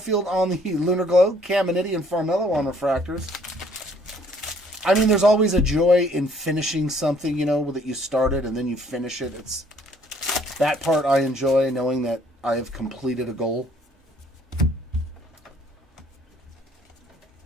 on the Lunar Glow, Caminiti and Farmello on refractors. I mean, there's always a joy in finishing something, you know, that you started and then you finish it. It's that part I enjoy, knowing that I have completed a goal.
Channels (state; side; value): normal; both; correlation 0.61